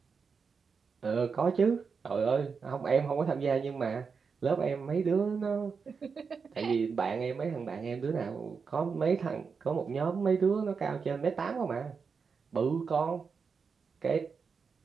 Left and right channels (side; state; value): left; quieter; 5.5 dB